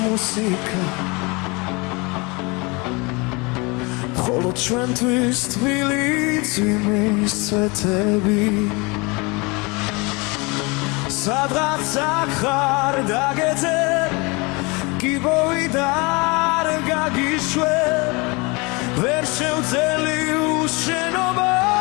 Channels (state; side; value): quieter; right; 27.4 dB